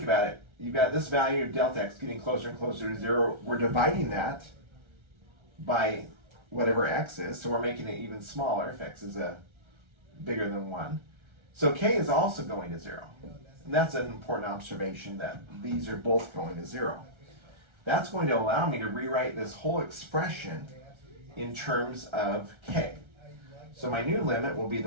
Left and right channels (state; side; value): late; left; 1.3 ms